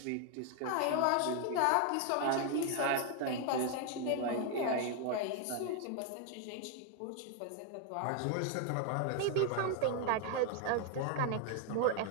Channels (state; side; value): different; both; correlation 0.00